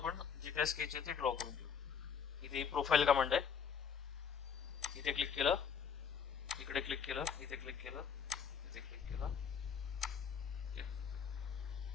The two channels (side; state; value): right; quieter; 6.9 dB